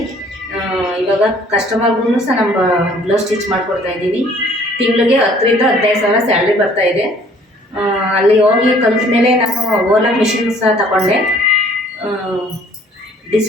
ಇವಾಗ ಕಸ್ಟಮರ್ಗೂ ಸಹ ನಮ್ಮ ಬ್ಲೌಸ್ ಸ್ಟಿಚ್ ಮಾಡಿಕೊಡ್ತಾಯಿದ್ದೀನಿ. ತಿಂಗಳಿಗೆ 10,000 ರಿಂದ 15,000 ಸ್ಯಾಲ್ರಿ ಬರ್ತಾಯಿದೆ. ಅಲ್ಲಿ ಹೋಗಿ ಕಲಿತ ಮೇಲೆ ನಾನು ಓಲಾ ಮಿಷಿನ್ ಸಹ ತಗೊಂಡೆ.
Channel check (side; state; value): both; normal; correlation 0.57